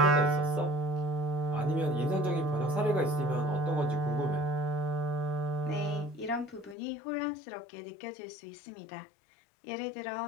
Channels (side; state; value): right; drops out; at 6.8 s